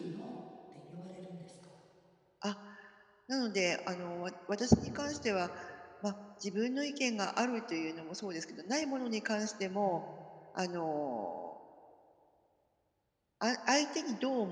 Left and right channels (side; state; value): both; identical; correlation 1.00